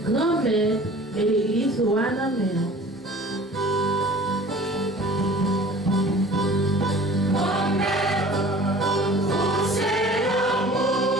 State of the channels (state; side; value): normal; both; correlation 0.46